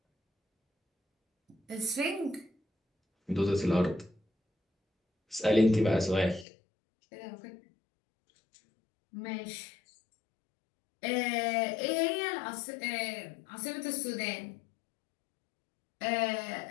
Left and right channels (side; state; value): right; drops out; at 6.5 s